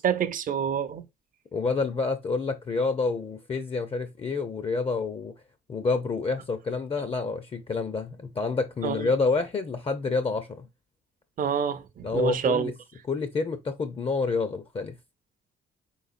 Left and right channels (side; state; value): both; normal; correlation 0.51